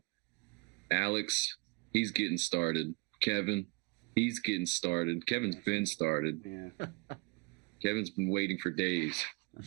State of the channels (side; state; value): left; quieter; 29.3 dB